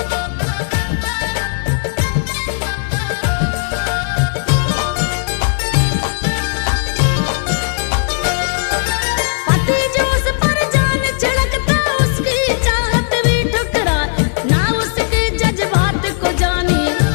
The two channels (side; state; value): right; silent; 64 dB below the other